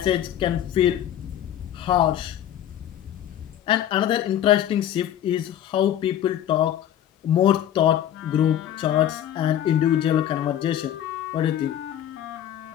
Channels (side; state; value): right; quieter; 11.1 dB